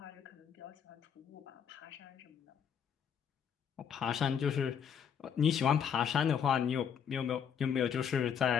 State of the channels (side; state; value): right; quieter; 7.8 dB